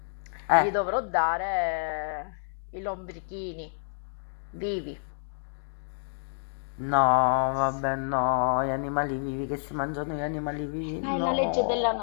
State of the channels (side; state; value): right; silent; digital silence